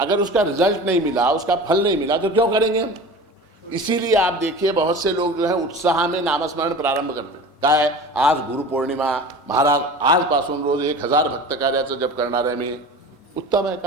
उसका रिजल्ट नहीं मिला, उसका फल नहीं मिला, तो क्यों करेंगे हम? इसीलिए आप देखिए बहुत से लोग जो है उत्साह में नामस्मरण प्रारंभ करते हैं. काय आज गुरुपौर्णिमा, महाराज आजपासून रोज 1000 भक्त कार्याचं जप करणार आहे मी. उत्तम है,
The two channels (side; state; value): both; normal; correlation 0.36